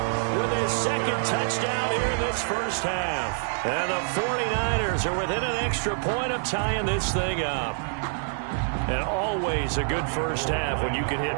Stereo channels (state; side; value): silent; left; digital silence